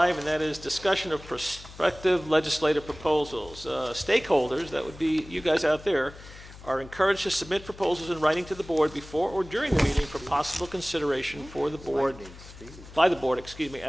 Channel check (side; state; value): left; noise; hum, 17 dB below the sound